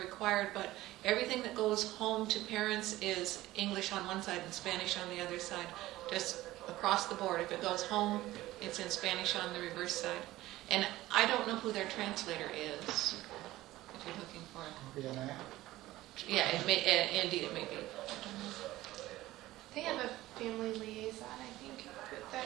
but everything that goes home to parents is English on one side and Spanish on the other side, just across the board. If it goes home, it's in Spanish on the reverse side. And I don't know who their translator is, if you're looking for it. Yeah, indeed it may be. They have a family liaison, I think, that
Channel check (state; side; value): quieter; left; 16.6 dB